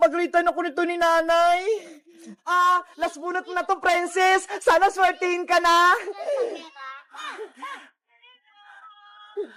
ako nito ni nanay. Last bunot na to, princess. Sana swertihin ka na.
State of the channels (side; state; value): both; identical; correlation 1.00